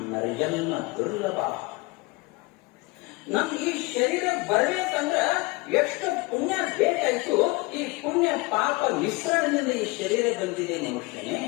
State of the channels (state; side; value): quieter; right; 24.2 dB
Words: ನರಜನ್ಮ ದುರ್ಲಭ. ನಮ್ ಈ ಶರೀರ ಬರ್ಬೇಕಂದ್ರ ಎಷ್ಟು ಪುಣ್ಯ ಬೇಕಾಯ್ತು. ಈ ಪುಣ್ಯ ಪಾಪ ಮಿಶ್ರಣದಿಂದ ಈ ಶರೀರ ಬಂದಿದೆ ಮನುಷ್ಯನೇ.